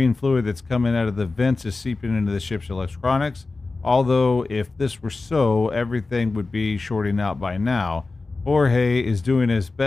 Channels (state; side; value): quieter; right; 3.7 dB